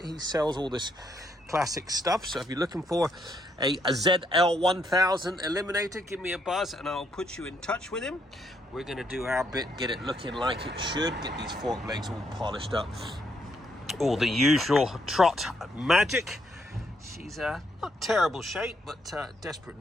He sells all this classic stuff, so if you're looking for a ZL1000 Eliminator, give me a buzz and I'll put you in touch with him. We're going to do our bit, get it looking like it should, get these fork legs all polished up, all the usual trot magic. She's not terrible shape, but desperate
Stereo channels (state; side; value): normal; both; correlation 0.74